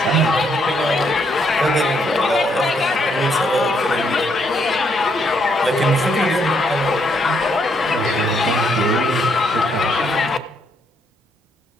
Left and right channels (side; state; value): both; normal; correlation 0.73